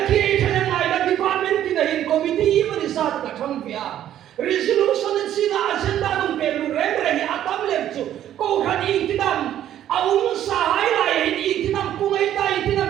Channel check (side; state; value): left; quieter; 11.4 dB